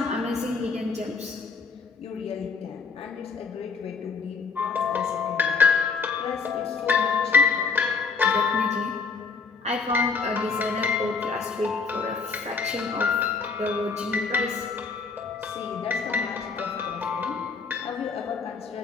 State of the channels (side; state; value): right; quieter; 4.9 dB